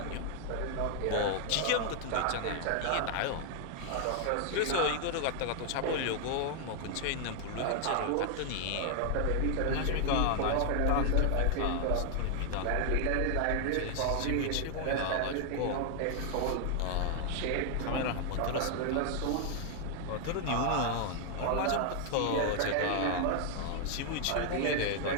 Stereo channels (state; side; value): different; both; correlation 0.00